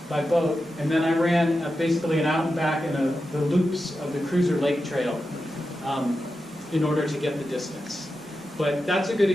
by boat, and then I ran basically an out and back in the loops of the Cruiser Lake Trail in order to get the distance. But that's a good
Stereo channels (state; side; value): normal; both; correlation 0.90